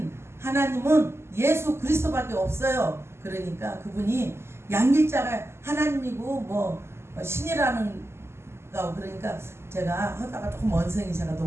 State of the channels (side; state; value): left; late; 0.12 ms